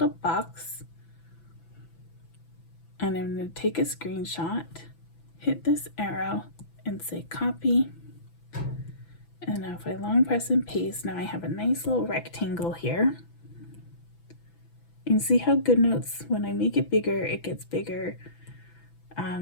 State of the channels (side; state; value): right; late; 6.0 ms